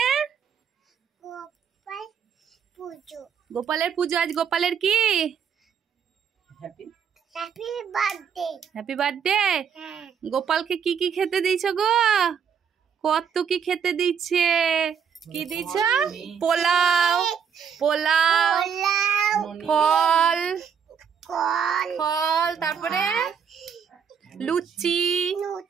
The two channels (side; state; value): left; quieter; 7.3 dB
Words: গোপালের পুজো। আজ গোপালের কি? Happy birthday. গোপালকে কি কি খেতে দিয়েছ গো? কত কি খেতে দিচ্ছে? কি দিয়েছ? পোলাও, পোলাও, ফল, ফল, তারপরে লুচি,